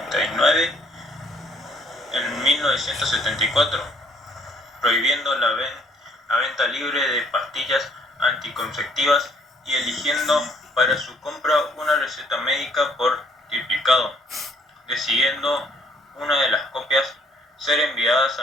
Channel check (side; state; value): both; normal; correlation 0.63